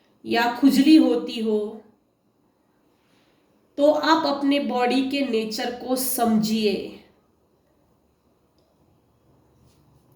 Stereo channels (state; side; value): identical; both; correlation 1.00